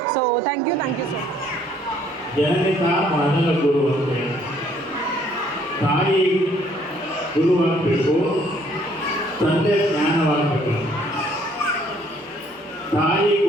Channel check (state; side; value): normal; both; correlation 0.63